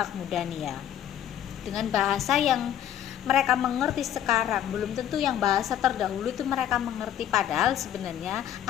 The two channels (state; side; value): quieter; right; 10.8 dB